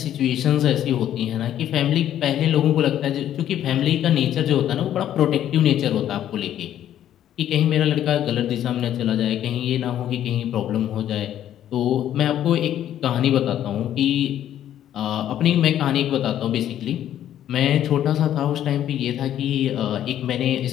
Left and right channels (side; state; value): right; quieter; 11.2 dB